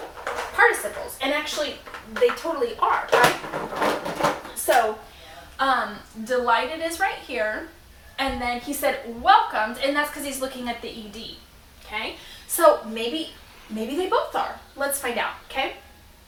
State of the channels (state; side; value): identical; both; correlation 1.00